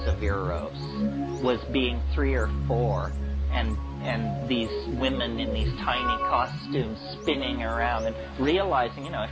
of Eros was being 3 or 4, and these women in these tiny costumes spinning around and realizing, you know,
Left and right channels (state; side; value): identical; both; correlation 1.00